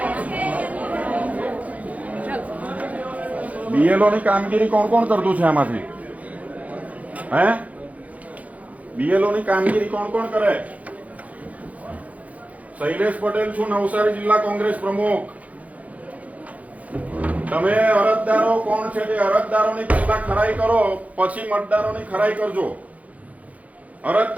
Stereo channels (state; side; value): late; left; 0.070 ms